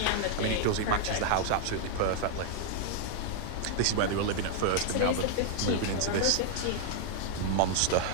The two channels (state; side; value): different; both; correlation -0.01